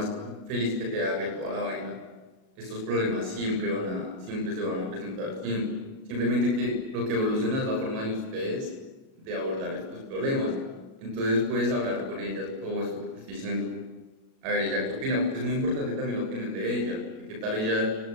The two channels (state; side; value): late; left; 37 ms